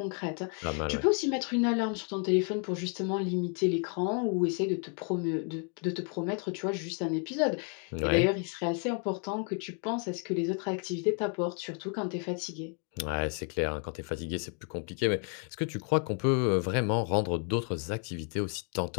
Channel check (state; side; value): quieter; right; 39.8 dB